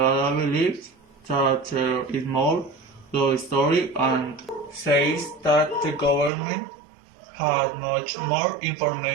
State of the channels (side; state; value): left; drops out; at 6.3 s